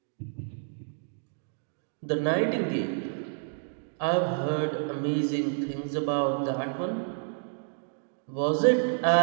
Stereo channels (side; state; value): left; silent; digital silence